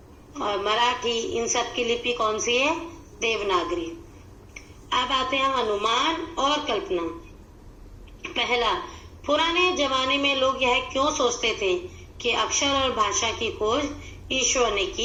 और मराठी, इन सब की लिपि कौन सी है? देवनागरी। अब आते हैं अनुमान और कल्पना। पहला, पुराने जमाने में लोग यह क्यों सोचते थे कि अक्षर और भाषा की खोज ईश्वर ने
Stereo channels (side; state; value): both; identical; correlation 1.00